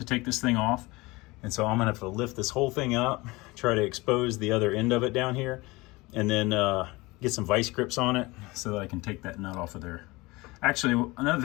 take this thing off. And so I'm gonna have to lift this whole thing up, try to expose the other end of it down here, and then get some vice grips on it so that I can take that nut off of there. Actually, another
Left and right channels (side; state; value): right; quieter; 22.6 dB